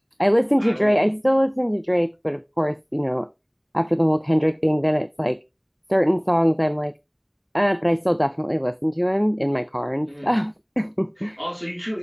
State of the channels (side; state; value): both; identical; correlation 1.00